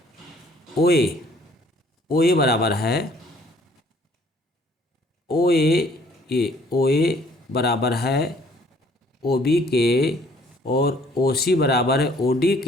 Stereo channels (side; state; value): both; normal; correlation 0.60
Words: OA बराबर है, OA बराबर है OB के, और OC बराबर है OD